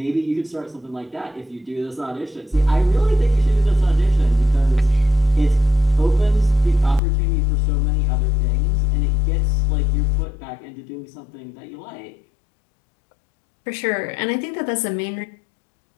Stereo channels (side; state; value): right; drops out; at 7.0 s